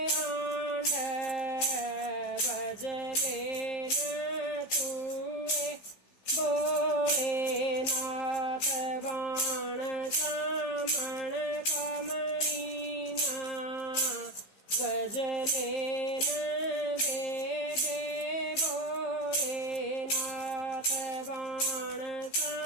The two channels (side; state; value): right; late; 15 ms